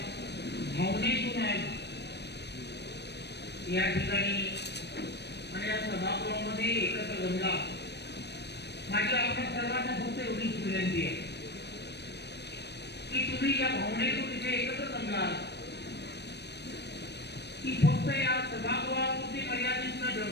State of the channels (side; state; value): right; late; 0.49 ms